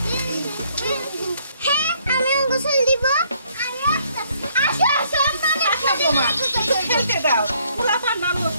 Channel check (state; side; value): inverted; both; correlation -0.67